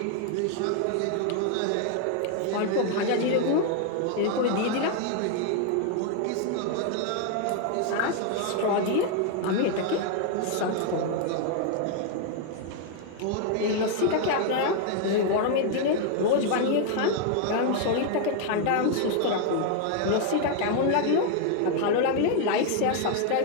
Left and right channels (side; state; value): both; different; correlation 0.00